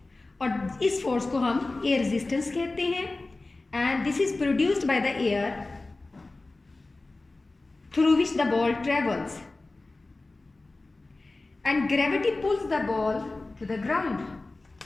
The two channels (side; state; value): right; quieter; 3.2 dB